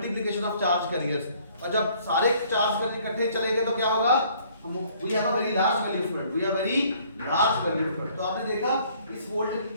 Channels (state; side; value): inverted; both; correlation -0.60